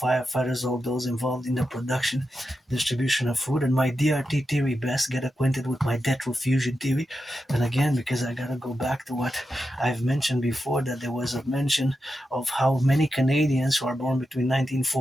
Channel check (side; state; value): both; normal; correlation 0.89